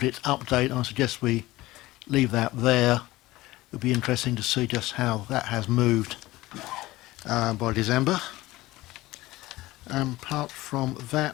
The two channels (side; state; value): right; quieter; 18.3 dB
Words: update. I suggest we leave that there. It'll be interesting to see just how that has moved by December. Apart from